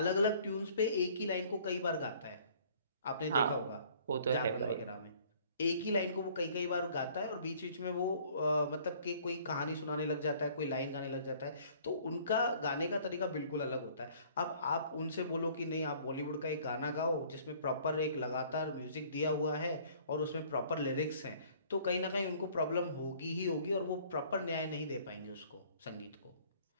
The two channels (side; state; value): both; inverted; correlation -0.55